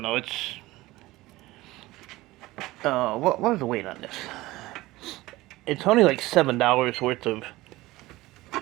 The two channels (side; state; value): left; quieter; 18.9 dB